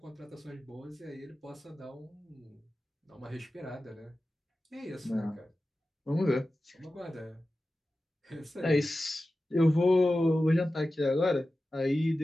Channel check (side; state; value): both; normal; correlation 0.94